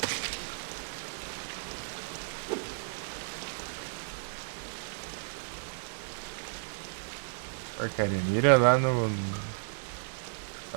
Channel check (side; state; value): left; silent; digital silence